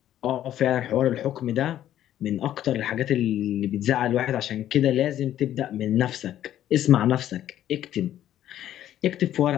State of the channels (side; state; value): right; quieter; 11.9 dB